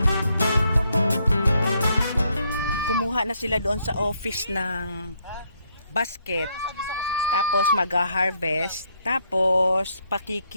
Kumuha na sila doon sa office ng basket. Tapos mag-harvest. Tapos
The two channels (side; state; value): both; inverted; correlation -0.73